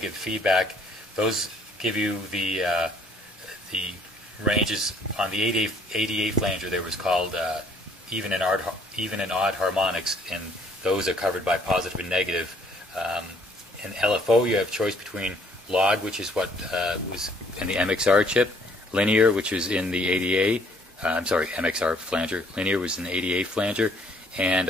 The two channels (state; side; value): normal; both; correlation 0.62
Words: feedback. Those give you the ranges on the 88 flanger. There was called even and odd harmonics, and those are covered by positive and negative. In LFO, you have choice between log, which is what was in the MXR chip, linear, which is in the ADA. I'm sorry, MXR flanger. Linear was in the ADA flanger, and